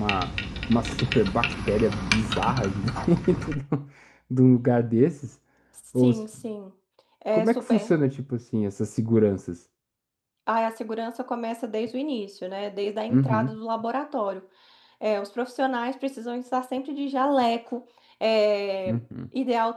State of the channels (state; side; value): identical; both; correlation 1.00